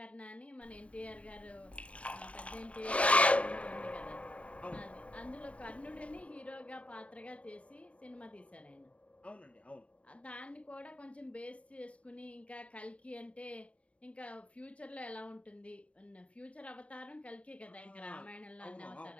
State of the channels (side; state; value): right; late; 0.064 ms